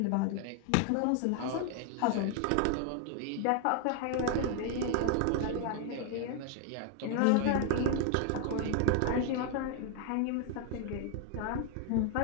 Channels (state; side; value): different; both; correlation 0.00